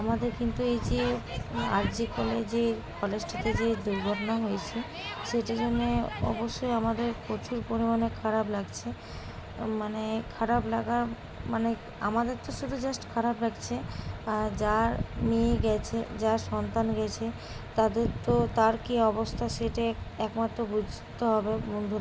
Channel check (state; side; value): identical; both; correlation 1.00